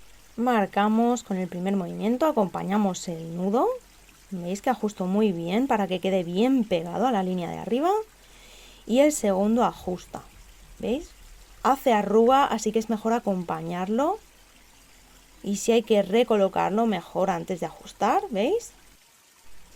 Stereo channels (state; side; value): identical; both; correlation 1.00